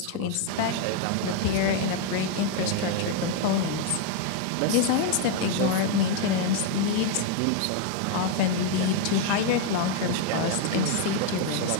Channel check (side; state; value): both; different; correlation 0.01